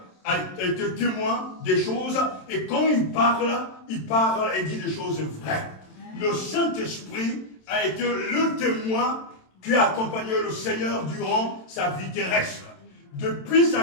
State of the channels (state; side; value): late; right; 27 ms